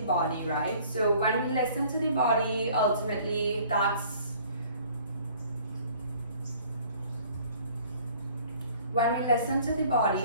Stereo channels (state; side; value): inverted; both; correlation -0.54